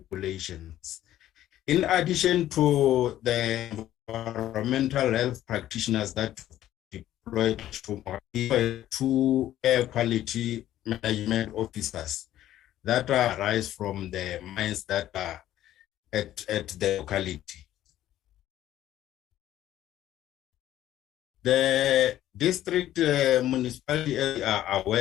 regulations. In addition to the environmental health practitioners that deployed to 2 air quality management officers that arise from the mines that are at the locality. The district municipality are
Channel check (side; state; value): right; quieter; 13.0 dB